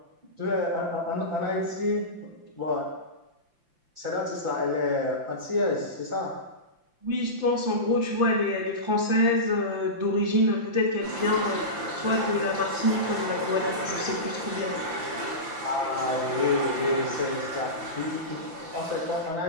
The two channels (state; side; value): late; left; 5.8 ms